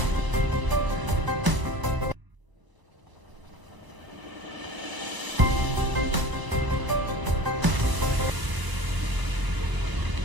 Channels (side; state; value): left; late; 1.0 ms